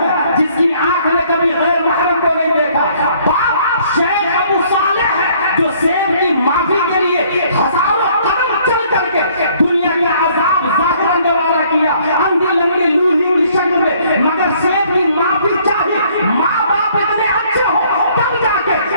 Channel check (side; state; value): both; inverted; correlation -0.61